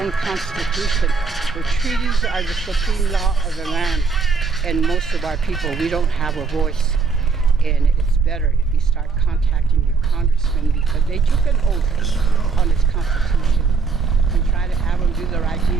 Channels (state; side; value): quieter; left; 4.9 dB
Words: own constitution. The treaties are the supreme law of the land, and most of our people, we don't have a voice. And it's better if you start contacting your congressman because they took an oath on this constitution and try to have them do the right